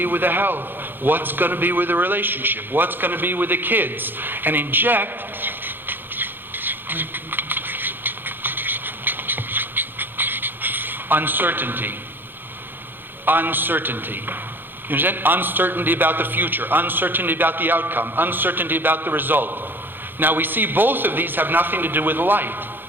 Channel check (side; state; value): left; late; 0.097 ms